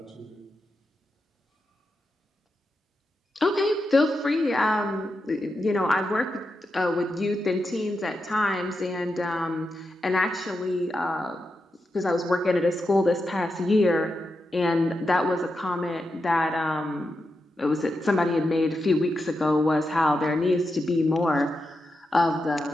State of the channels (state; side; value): normal; both; correlation 0.87